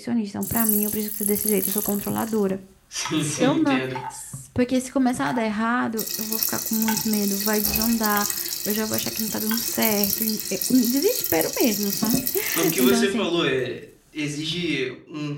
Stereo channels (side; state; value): both; identical; correlation 1.00